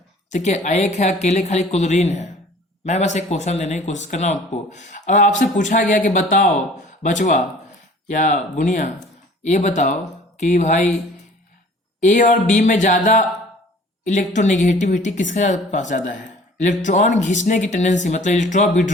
ठीक है। एक है अकेले खाली क्लोरीन है। मैं बस एक क्वेश्चन देने की कोशिश कर रहा हूं आपको। और आपसे पूछा गया कि बताओ बचवा या बुनिया, ये बताओ कि भाई ए और बी में ज्यादा इलेक्ट्रोनेगेटिविटी किसके पास ज्यादा है, इलेक्ट्रॉन खींचने की टेंडेंसी, मतलब इलेक्ट्रॉन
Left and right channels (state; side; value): normal; both; correlation 0.49